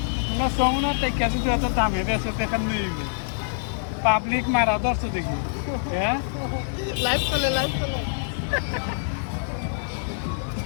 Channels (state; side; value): silent; right; 62 dB below the other